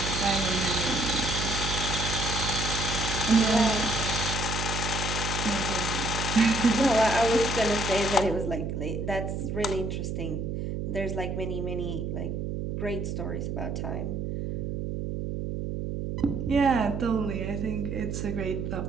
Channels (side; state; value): right; noise; hum, 3 dB below the sound